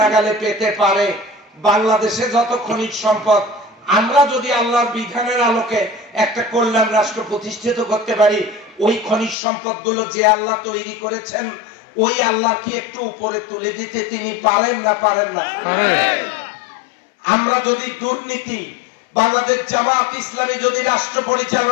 পেতে পারে, বাংলাদেশে যত খনিজ সম্পদ আমরা যদি আল্লাহর বিধানের আলোকে একটা কল্যাণ রাষ্ট্র প্রতিষ্ঠিত করতে পারি, ওই খনিজ সম্পদ গুলো যে আল্লাহ তৈরি করেছেন ওই আল্লাহ কি একটু উপরে তুলে দিতে তিনি পারেন না পারেন না? আমরা যদি দুর্নীতি, বাংলাদেশ জামাত ইসলামী যদি রাষ্ট্র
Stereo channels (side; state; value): right; drops out; at 9.3 s